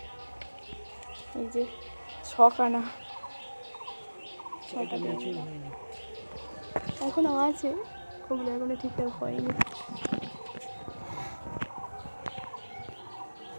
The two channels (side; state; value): both; inverted; correlation -1.00